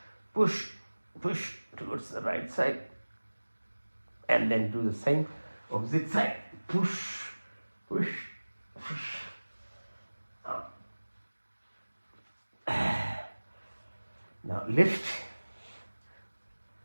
towards the right side. And then do the same, opposite side. Push. Up. Now lift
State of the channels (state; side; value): inverted; both; correlation -1.00